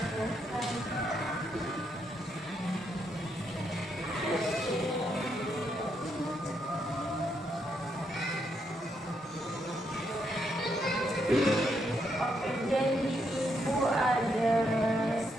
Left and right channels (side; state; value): both; normal; correlation 0.78